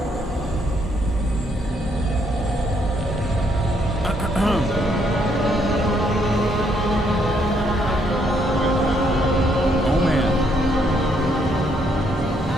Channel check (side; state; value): both; normal; correlation 0.72